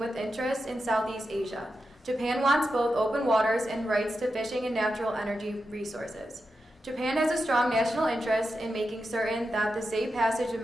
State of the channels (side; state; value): both; normal; correlation 0.89